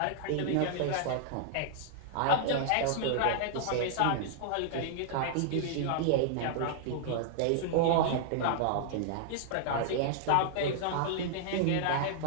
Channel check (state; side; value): different; both; correlation -0.01